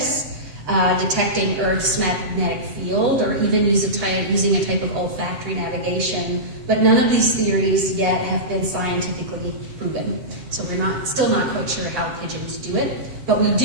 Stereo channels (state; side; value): late; left; 8.0 ms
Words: detecting Earth's magnetic field, or even using a type of olfactory navigation. But none of these theories yet have been scientifically proven. So we're still not quite sure how pigeons do it, but we